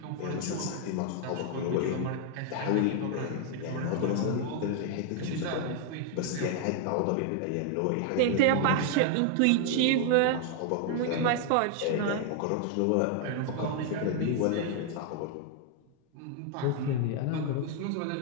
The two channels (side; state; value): both; different; correlation 0.00